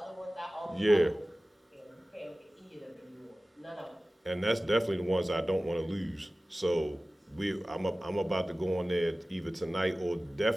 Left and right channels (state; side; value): normal; both; correlation 0.97